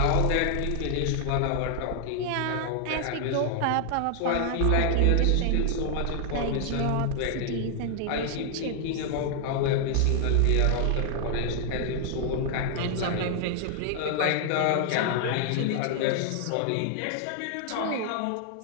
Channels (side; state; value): both; different; correlation 0.00